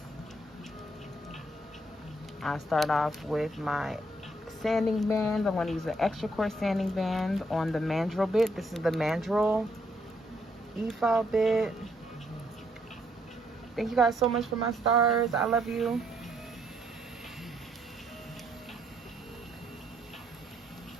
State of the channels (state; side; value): normal; both; correlation 0.71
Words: I start off with my sanding band. I'm going to use an extra coarse sanding band on the mandrel bit. This is the mandrel e-file bit. Thank you guys so much for my stars. I love you.